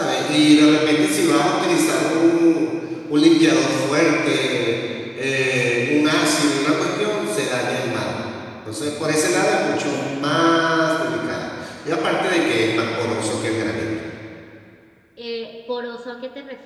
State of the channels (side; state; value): both; identical; correlation 1.00